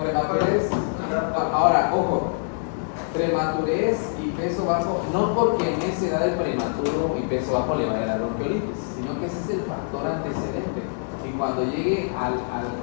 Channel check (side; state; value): right; silent; digital silence